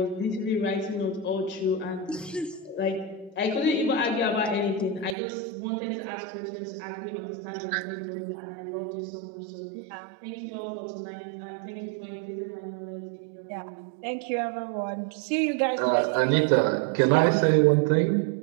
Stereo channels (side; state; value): left; drops out; at 5.2 s